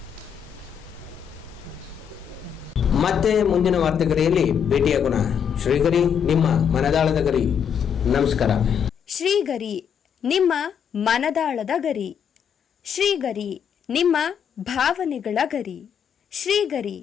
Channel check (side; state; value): right; quieter; 7.9 dB